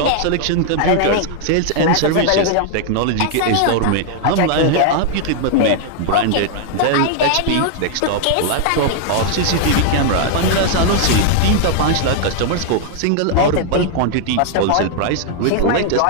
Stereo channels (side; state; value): both; different; correlation 0.00